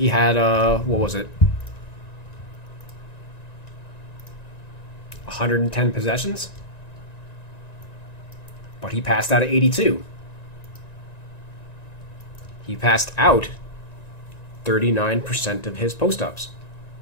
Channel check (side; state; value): right; late; 1.9 ms